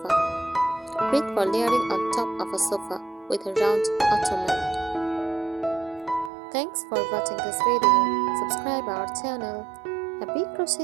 Great for layering on top of a sofa with a round ottoman. Thanks for watching this video. Subscribe our channel. Happy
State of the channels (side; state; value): left; drops out; at 6.3 s